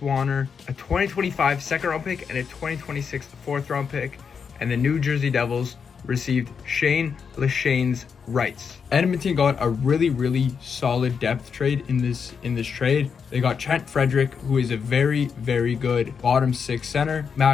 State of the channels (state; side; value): quieter; right; 6.3 dB